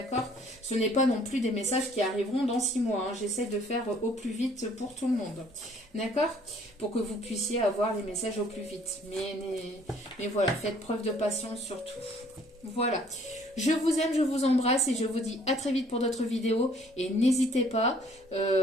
Ce n'est pas non plus des messages qui arriveront dans 6 mois, hein. J'essaie de faire au plus vite pour tout le monde, d'accord? Pour que vous puissiez avoir les messages au plus vite. Mais voilà, faites preuve de patience surtout. Voilà, je vous aime, je vous embrasse et je vous dis à très vite pour d'autres vidéos. Et n'hésitez pas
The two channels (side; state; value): both; normal; correlation 0.59